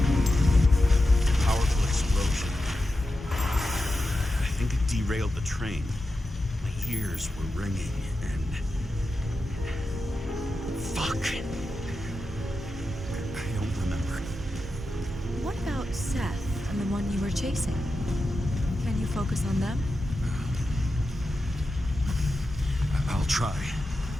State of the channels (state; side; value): normal; both; correlation 0.90